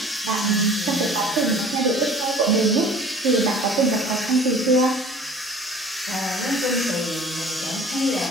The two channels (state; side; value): normal; both; correlation 0.47